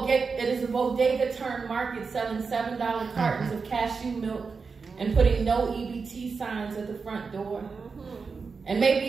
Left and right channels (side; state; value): left; quieter; 5.0 dB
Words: a bodega turned market selling $7 cartons of cashew milk and putting no EBT signs at the front door. And maybe